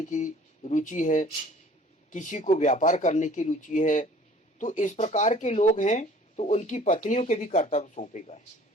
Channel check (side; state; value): both; normal; correlation 0.51